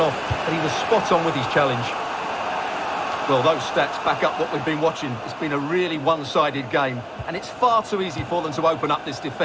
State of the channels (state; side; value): identical; both; correlation 1.00